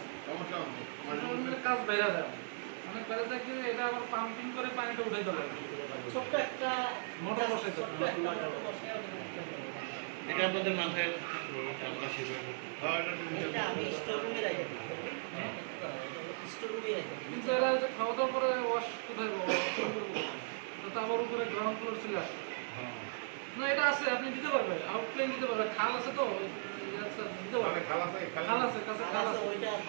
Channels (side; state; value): left; silent; 53 dB below the other